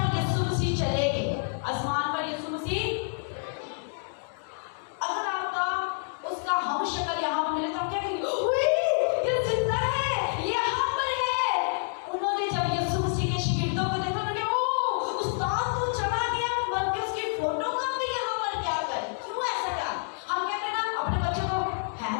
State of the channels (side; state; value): right; silent; digital silence